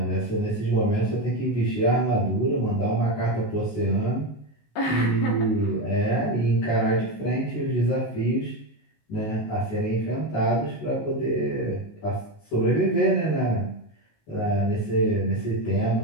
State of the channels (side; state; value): right; late; 19 ms